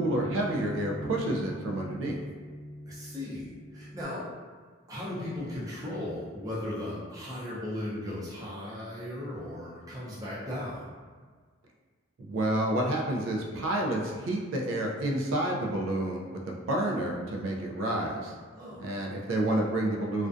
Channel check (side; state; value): both; normal; correlation 0.51